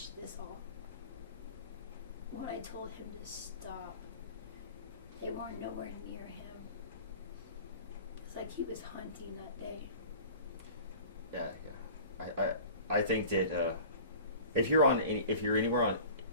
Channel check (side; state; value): both; inverted; correlation -0.42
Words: this all. When I told him to stop, they weren't nowhere near him. It's like he was hunting that day. Yeah. I think that if you're anywhere on